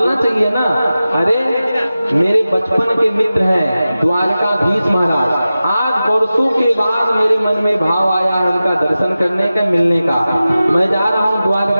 चाहिए ना, अरे मेरे बचपन के मित्र हैं द्वारकाधीश महाराज, आज वर्षों के बाद मेरे मन में भाव आया है उनका दर्शन करने का, मिलने का। मैं जा रहा हूँ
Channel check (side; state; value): both; inverted; correlation -0.95